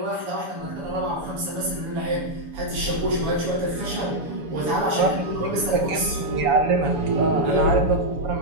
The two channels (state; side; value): late; left; 7.0 ms